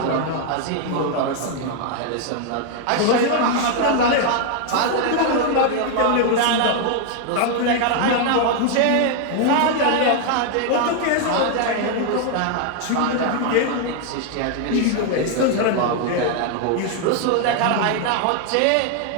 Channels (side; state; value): both; different; correlation 0.00